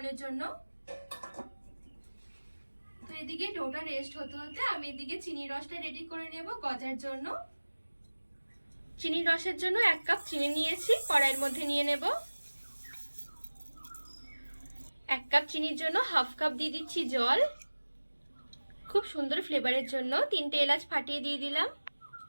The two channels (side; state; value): both; inverted; correlation -1.00